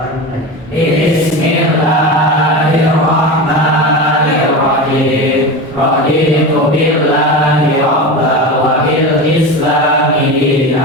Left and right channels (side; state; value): both; normal; correlation 0.25